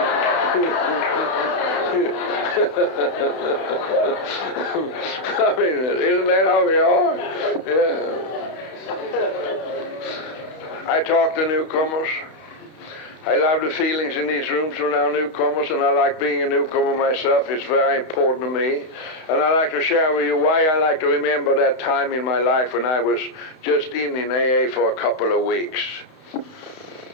I mean, isn't that how we are? Yeah. I talk to newcomers. I love the feelings in these rooms when there are newcomers, and I like being a newcomer myself. It's very important to me. And I'd like to share with you why I like to remember that time in my life when I was just in AA for a couple of weeks.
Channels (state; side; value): late; right; 31 ms